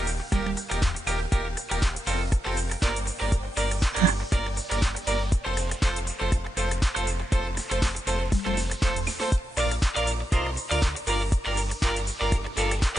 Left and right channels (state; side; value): normal; both; correlation 0.88